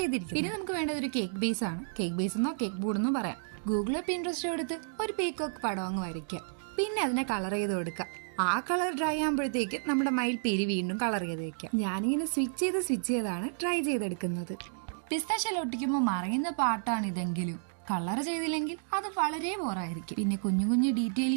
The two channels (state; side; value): silent; left; digital silence